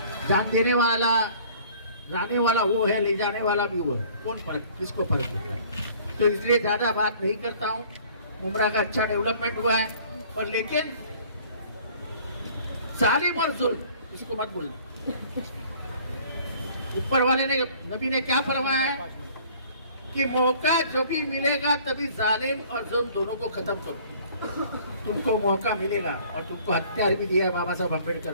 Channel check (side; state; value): both; inverted; correlation -0.53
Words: जान देने वाला लाने वाला वो है, ले जाने वाला भी वो है, कौन फर्क, किसको फर्क पड़ता है? तो इसलिए ज्यादा बात नहीं करता हूँ। उमरा का अच्छा डेवलपमेंट हुआ है, पर लेकिन जालिम और जुल्म किसी को मत बोलना। ऊपर वाले ने, नबी ने क्या फरमाया है कि मौका जो भी मिलेगा तभी जालिम और जुल्म दोनों को खत्म करो। तुमको मौका मिलेगा और तुमको हथियार भी दिया है बाबा साहब अम्बेडकर